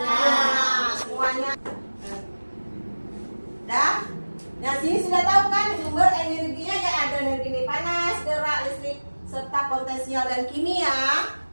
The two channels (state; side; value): inverted; both; correlation -1.00